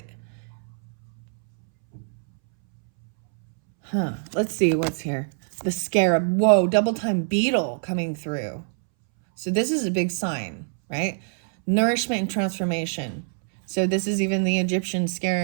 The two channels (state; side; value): silent; left; 62 dB below the other